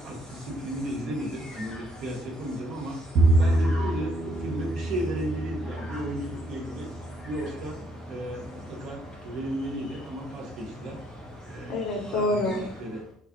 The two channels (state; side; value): normal; both; correlation 0.69